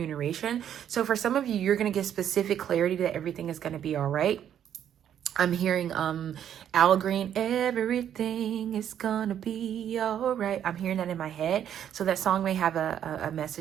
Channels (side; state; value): left; quieter; 9.8 dB